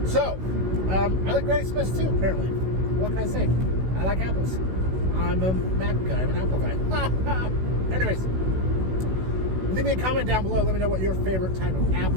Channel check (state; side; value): late; left; 16 ms